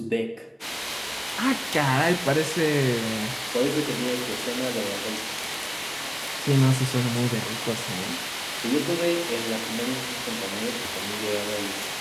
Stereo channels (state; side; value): identical; both; correlation 1.00